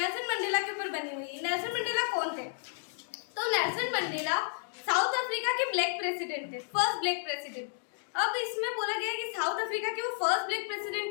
मंडेला के ऊपर बनी हुई है। नेल्सन मंडेला कौन थे? तो नेल्सन मंडेला साउथ अफ्रीका के ब्लैक प्रेसिडेंट थे, फर्स्ट ब्लैक प्रेसिडेंट। अब इसमें बोला गया कि साउथ अफ्रीका के वो फर्स्ट ब्लैक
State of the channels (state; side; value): silent; right; 57 dB below the other